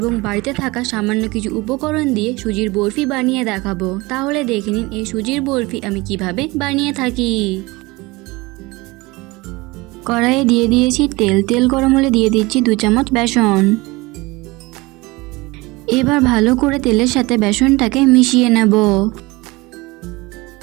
বাড়িতে থাকা সামান্য কিছু উপকরণ দিয়ে সুজির বরফি বানিয়ে দেখাবো। তাহলে দেখে নিন এই সুজির বরফি আমি কিভাবে বানিয়ে থাকি। কড়াইয়ে দিয়ে দিয়েছি তেল গরম হলে দিয়ে দিচ্ছি 2 চামচ বেসন। এবার ভালো করে তেলের সাথে বেসনটাকে মিশিয়ে নেব।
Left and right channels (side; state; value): left; quieter; 22.9 dB